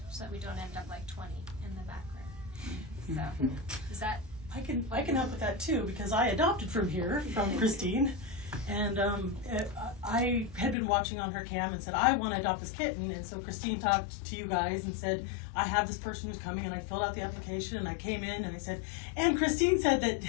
so that we don't end up like 20 in the background. So, is that? I can help with that too, because I adopted from here, from Christine, and I had been watching on her cam and said, I want to adopt this kitten, and so Christine talked to you guys and said, I have this person who's coming, and I filled out the application, and I came in and I said, and Christine said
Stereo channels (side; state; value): right; drops out; at 10.8 s